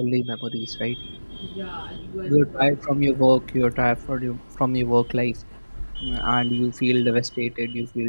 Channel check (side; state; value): both; inverted; correlation -1.00